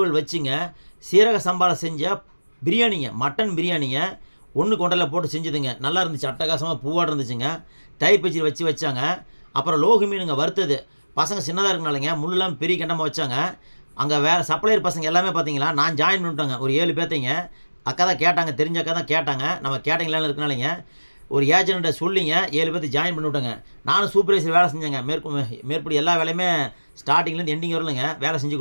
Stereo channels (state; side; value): inverted; both; correlation -1.00